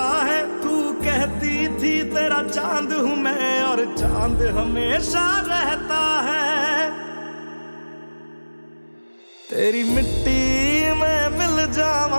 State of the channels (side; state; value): both; inverted; correlation -1.00